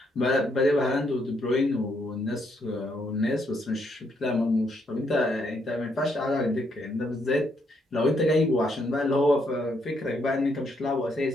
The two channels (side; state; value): both; normal; correlation 0.74